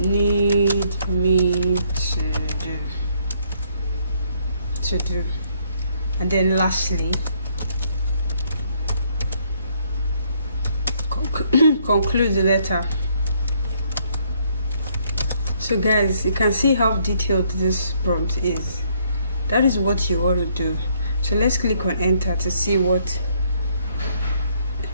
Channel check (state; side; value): inverted; both; correlation -0.69